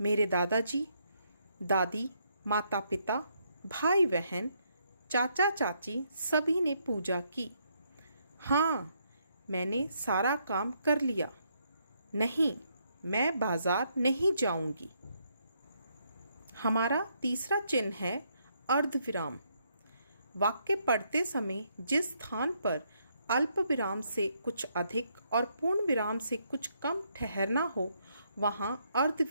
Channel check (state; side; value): inverted; both; correlation -0.74